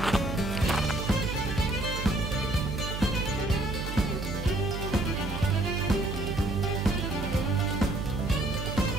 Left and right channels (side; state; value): right; noise; hum, 5 dB below the sound